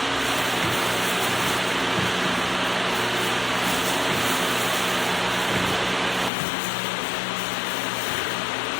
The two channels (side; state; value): right; drops out; at 6.3 s